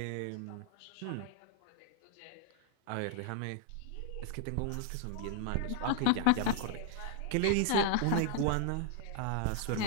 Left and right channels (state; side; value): different; both; correlation 0.00